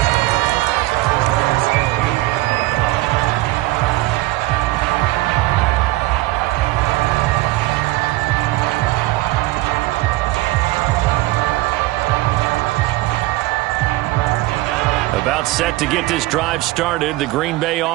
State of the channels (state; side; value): quieter; left; 19.3 dB